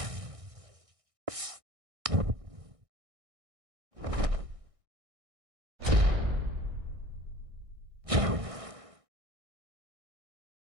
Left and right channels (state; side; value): late; left; 1.6 ms